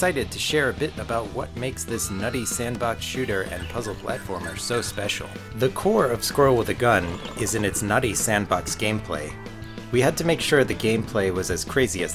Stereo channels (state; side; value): identical; both; correlation 1.00